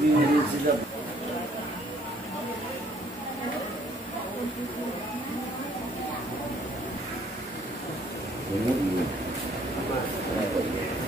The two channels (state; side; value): normal; both; correlation 0.62